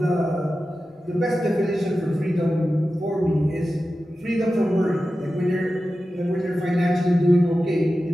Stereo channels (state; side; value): normal; both; correlation 0.93